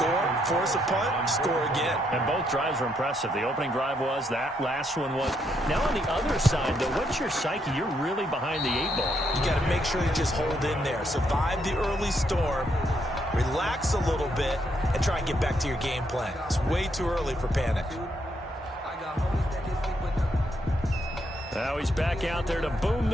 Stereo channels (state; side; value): normal; both; correlation 0.76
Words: force a punt, score again. And both drives were impressive. The opening drive was, that last one was. Now on the other side, though, what's your psyche? You're really behind the 8 ball. You got to make sure you just hold in there. Survive the early storm, relax a little bit, and try and get back to your game plan. It's way too early for panic. Now he's back out there to boom